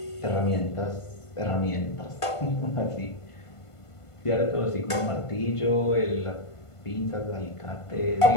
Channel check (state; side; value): late; right; 1.5 ms